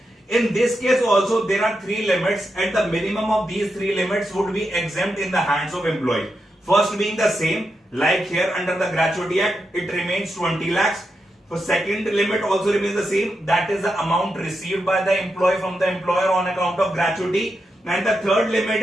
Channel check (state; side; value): normal; both; correlation 0.86